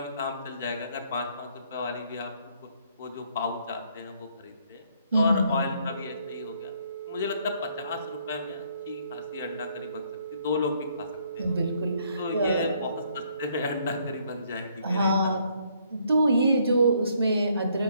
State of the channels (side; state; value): both; inverted; correlation -0.68